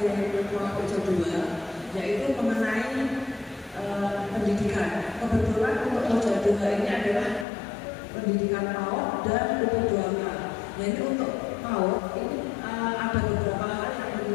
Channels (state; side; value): drops out; right; at 7.5 s